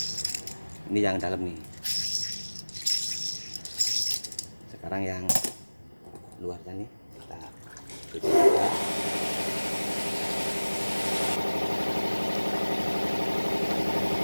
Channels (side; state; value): both; inverted; correlation -1.00